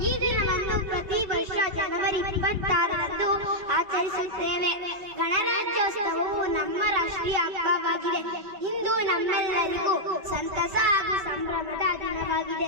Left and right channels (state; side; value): late; left; 5.2 ms